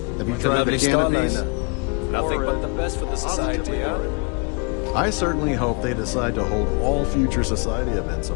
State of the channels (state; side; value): quieter; right; 34.9 dB